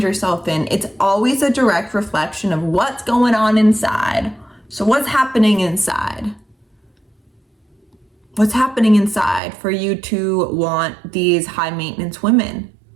yourself in, it's always a direct reflection of what's going on inside. So what's happening inside? What's happening inside for you to want these high maintenance women?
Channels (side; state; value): left; drops out; at 9.4 s